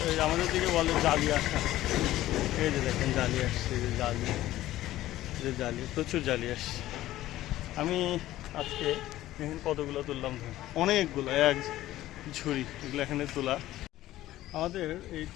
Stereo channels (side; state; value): right; quieter; 15.0 dB